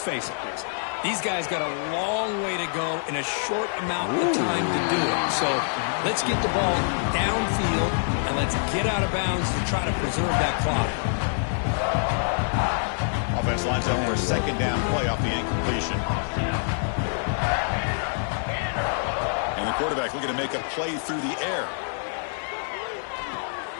face it, Chris. These guys got a long way to go in a short amount of time to do it. So let's get the ball downfield, and let's get out of bounds to try to preserve that clock. Offense lines up for a 2nd down play off the incompletion. And the quarterback looking to make a play through the air.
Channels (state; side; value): silent; right; 59 dB below the other